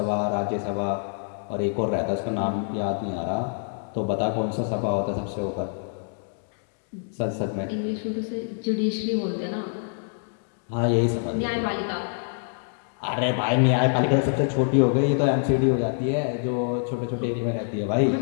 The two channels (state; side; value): silent; right; digital silence